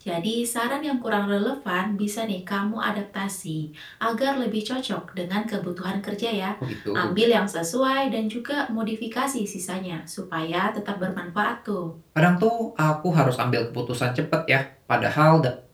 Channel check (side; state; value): both; identical; correlation 1.00